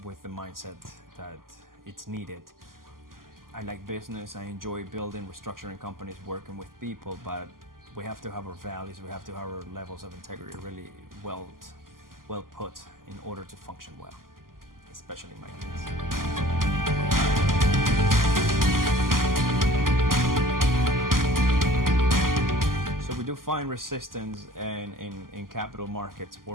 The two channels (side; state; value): left; late; 0.91 ms